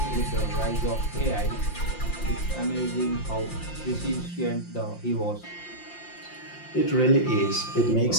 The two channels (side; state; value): right; late; 5.7 ms